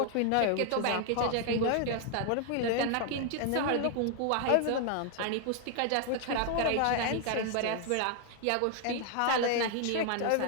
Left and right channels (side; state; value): both; different; correlation 0.00